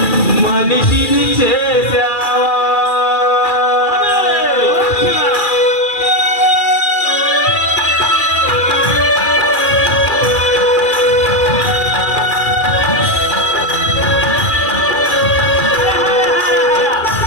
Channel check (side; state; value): right; late; 2.4 ms